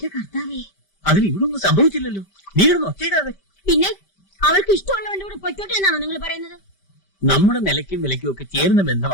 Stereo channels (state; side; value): late; right; 5.1 ms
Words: കർത്താവേ, അതിന് ഇവിടെ ഒന്നും സംഭവിച്ചില്ലല്ലോ. നീ കിടന്ന് ഒച്ചയിടാതെ. പിന്നെ അവൾക്ക് ഇഷ്ടമുള്ളവന്റെ കൂടെ പൊയ്ക്കോട്ടെ എന്നാണോ നിങ്ങൾ പറയുന്നത്? നമ്മുടെ നിലയ്ക്കും വിലയ്ക്കും ഒക്കെ ചേരുന്ന